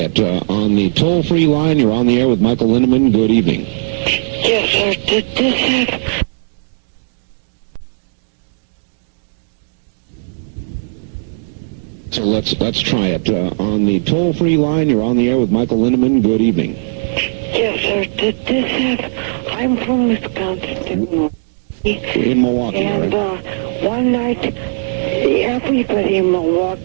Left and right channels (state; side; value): silent; left; digital silence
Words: On the toll-free line, you're on the air with Michael Lindeman. Good evening. Yes, sir. Did this have... So let's try it. On the toll-free line, you're on the air with Michael Lindeman. Good evening. Yes, sir. Did this have... I'm from Wisconsin. In Milwaukee, and one night, everybody in